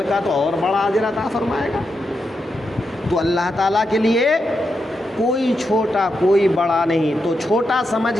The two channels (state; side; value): normal; both; correlation 0.85